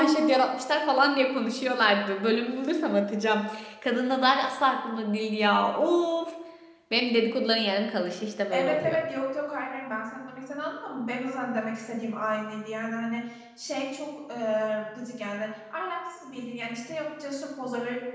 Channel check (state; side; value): identical; both; correlation 1.00